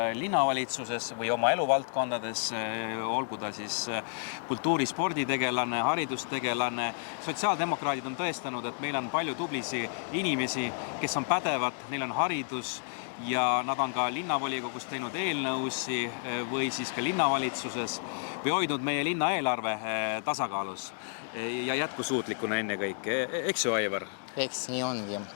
linnavalitsuses või oma eluvaldkondades, olgu ta siis kultuuri- sporditegelane, haridustegelane. Sotsiaaldemokraadid on tõestanud, et meil on palju tubli inimesi, kes on pädevad, neil on haridus ja nad on ka linnavolikogus teinud eelnõusi või siis ka linnavalitsuses või hoidnud meie linna eelarve tasakaalus ja jätkusuutlikuna ennekõike. Eks ju, Aivar? Eks nii ongi.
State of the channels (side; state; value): right; silent; digital silence